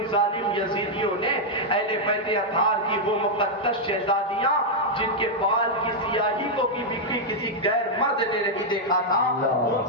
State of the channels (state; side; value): normal; both; correlation -0.02